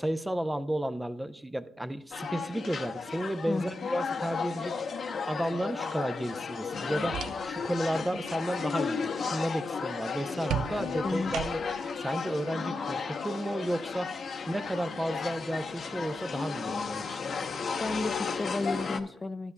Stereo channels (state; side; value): normal; both; correlation 0.89